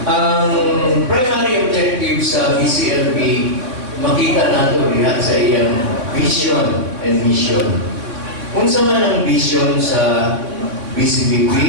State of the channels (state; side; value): late; left; 3.7 ms